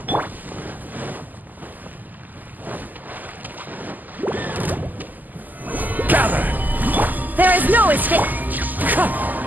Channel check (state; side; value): late; left; 0.084 ms